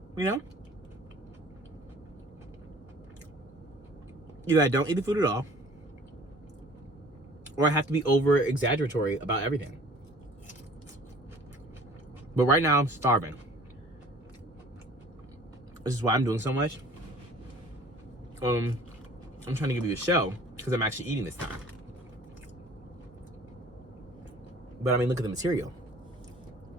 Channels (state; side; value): normal; both; correlation 0.50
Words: you know? Either I don't eat the food at all, or I have to be over exaggeratory about everything. But right now I'm starving. This is why I'm doing so much. I'm trying to give you a show because I'm actually eating this time. But I mean, look at the material.